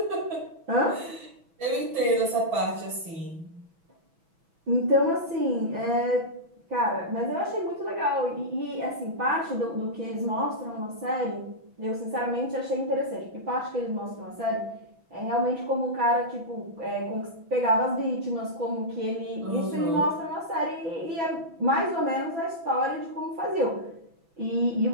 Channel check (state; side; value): late; left; 6.1 ms